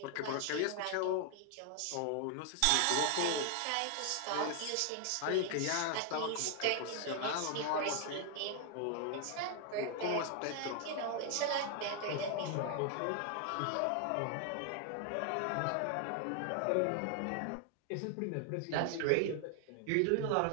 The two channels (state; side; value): different; both; correlation 0.00